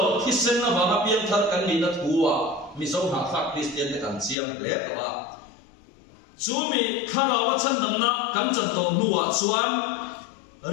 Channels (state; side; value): drops out; right; at 4.4 s